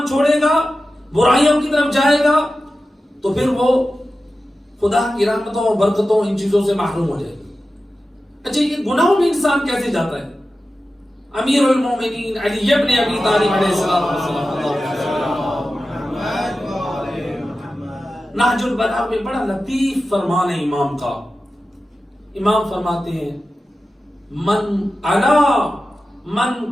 چھوڑے گا، برائیوں کی طرف جائے گا، تو پھر وہ خدا کی رحمتوں اور برکتوں ان چیزوں سے محروم ہو جائے گا۔ اچھا، یہ گناہوں میں انسان کیسے جاتا ہے؟ امیر المومنین علی ابن ابی طالب علیہ السلام نہج البلاغہ میں بڑا لطیف فرمان ہے امام کا۔ امام فرماتے ہیں من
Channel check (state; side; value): normal; both; correlation 0.93